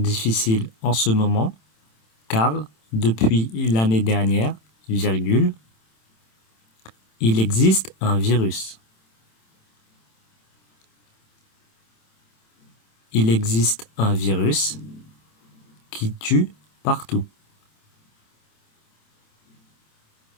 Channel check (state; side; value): late; right; 27 ms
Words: en ce moment car depuis l'année dernière, virgule, il existe un virus. Il existe un virus qui tue partout.